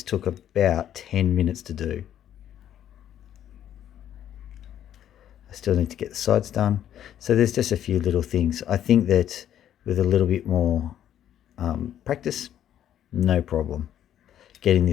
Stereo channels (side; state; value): right; quieter; 10.8 dB